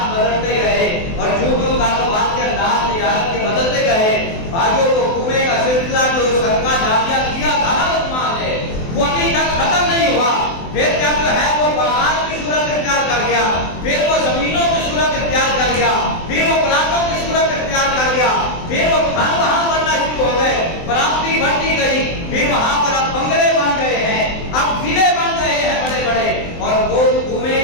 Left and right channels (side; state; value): right; late; 24 ms